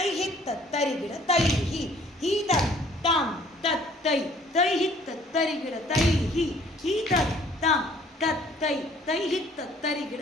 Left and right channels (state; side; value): normal; both; correlation 0.57